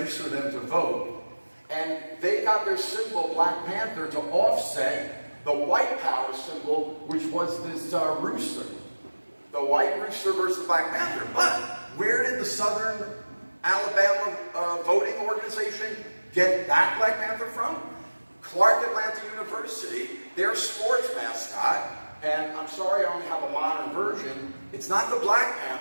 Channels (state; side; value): inverted; both; correlation -1.00